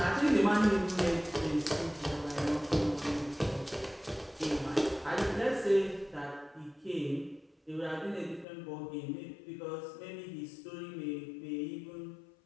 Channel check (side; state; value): right; drops out; at 8.5 s